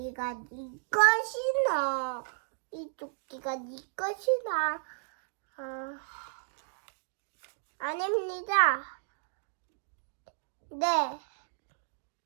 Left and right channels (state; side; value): silent; left; digital silence